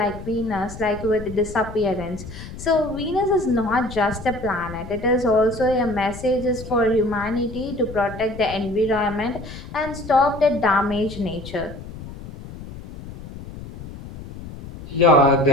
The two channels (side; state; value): left; noise; rumble, 13 dB below the sound